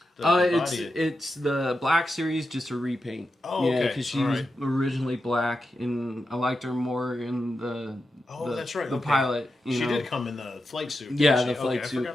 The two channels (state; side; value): normal; both; correlation 0.89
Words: It's the Black series, just a repaint. Oh, yeah, okay. because she was originally black, and I liked her more in the That's right. the okay. pilot. She You know? did come in the flight suit. Yeah, didn't the she? flight okay, suit. I